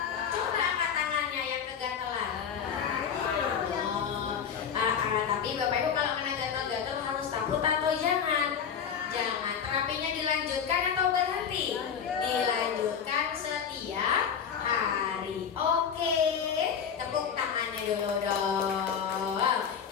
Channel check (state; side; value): quieter; right; 7.5 dB